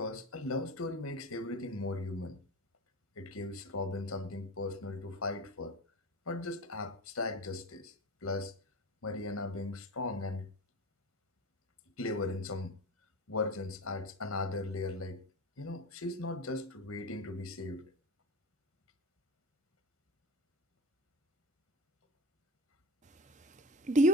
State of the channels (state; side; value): normal; both; correlation 0.30